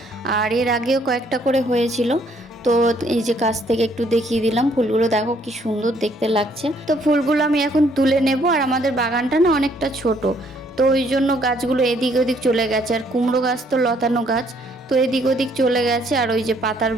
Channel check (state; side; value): normal; both; correlation 0.66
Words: আর এর আগেও কয়েকটা করে হয়েছিল, তো এই যে কাছ থেকে একটু দেখিয়ে দিলাম। ফুলগুলো দেখো কি সুন্দর দেখতে লাগছে। তো ফুলগুলো আমি এখন তুলে নেব। আর আমাদের বাগানটা না অনেকটা ছোট, তো ওই জন্য গাছগুলো এদিক ওদিক চলে গেছে। আর কুমড়ো গাছ তো লতানো গাছ, তো এদিক ওদিক চলে গেছে। আর ওই যে পাতার